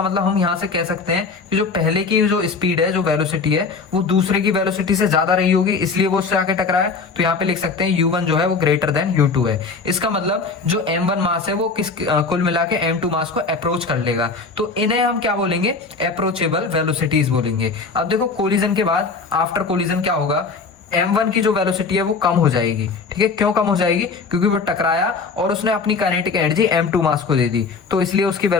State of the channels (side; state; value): right; quieter; 4.6 dB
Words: मतलब हम यहाँ से कह सकते हैं कि जो पहले की जो स्पीड है, जो वेलोसिटी है, वो दूसरे की वेलोसिटी से ज्यादा रही होगी, इसलिए वो उससे आके टकराया। तो यहाँ पे लिख सकते हैं u1 जो है वो ग्रेटर देन u2 है। इसका मतलब जो m1 मास है वो कुल मिला के m2 मास को अप्रोच कर लेगा, तो इन्हें हम क्या बोलेंगे? अप्रोचेबल वेलोसिटीज बोलेंगे। अब देखो कोलिजन के बाद आफ्टर कोलिजन क्या होगा? m1 की जो वेलोसिटी है वो कम हो जाएगी। ठीक है, क्यों कम हो जाएगी? क्योंकि वो टकराया और उसने अपनी काइनेटिक एनर्जी m2 मास को दे दी, तो इसलिए उसकी